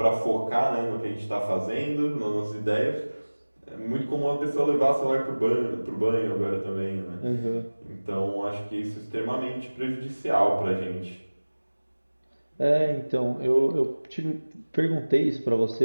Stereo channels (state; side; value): inverted; both; correlation -1.00